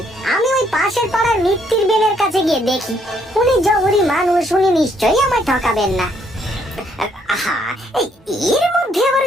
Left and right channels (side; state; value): both; normal; correlation 0.69